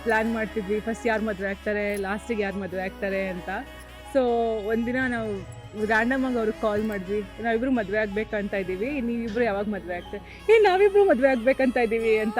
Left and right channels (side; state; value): both; identical; correlation 1.00